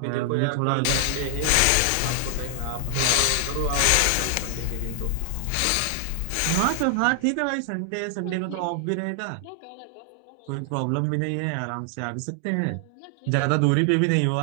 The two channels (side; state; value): both; different; correlation 0.00